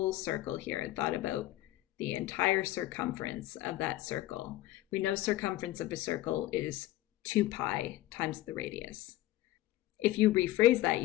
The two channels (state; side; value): quieter; right; 15.8 dB